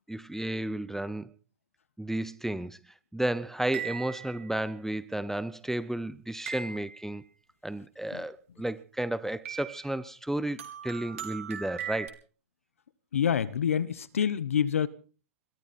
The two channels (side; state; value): both; normal; correlation 0.36